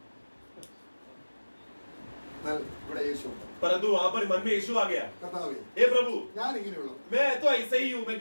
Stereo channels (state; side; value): inverted; both; correlation -1.00